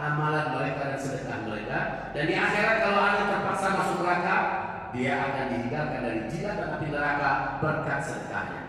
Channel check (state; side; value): identical; both; correlation 1.00